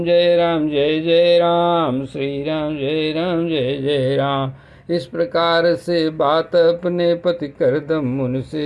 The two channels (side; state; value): both; identical; correlation 1.00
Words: जय राम जय जय राम, श्री राम जय राम जय जय राम। इस प्रकार से बात अपने पति करदम मुनि